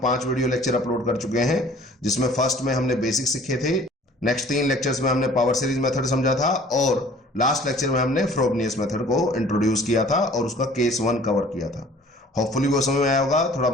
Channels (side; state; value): both; normal; correlation 0.51